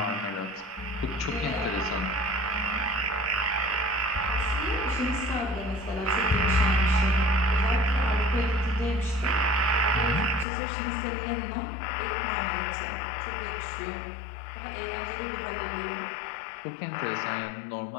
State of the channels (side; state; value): right; drops out; at 10.5 s